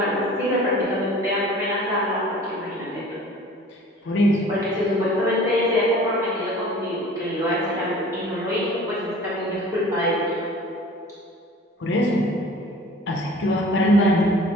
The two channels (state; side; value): normal; both; correlation 0.46